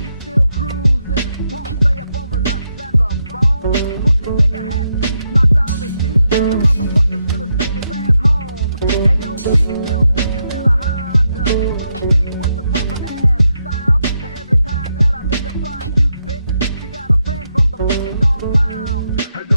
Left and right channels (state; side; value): inverted; both; correlation -0.82